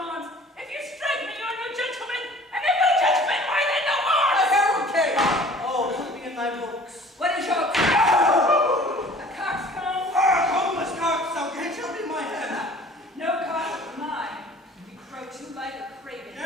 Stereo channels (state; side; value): normal; both; correlation 0.49